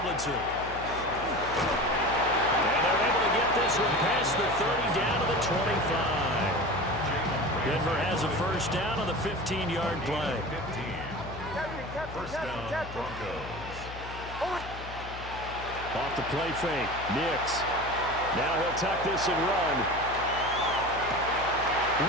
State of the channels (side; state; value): left; noise; hum, 12 dB below the sound